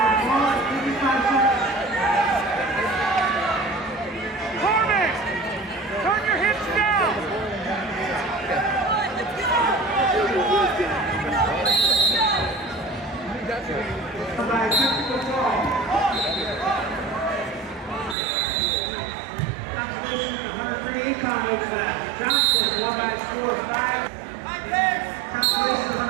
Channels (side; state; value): left; drops out; at 18.2 s